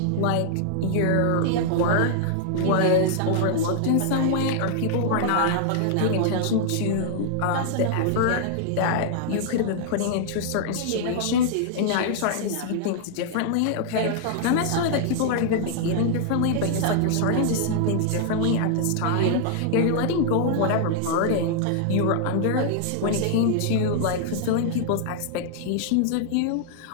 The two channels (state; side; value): different; both; correlation -0.01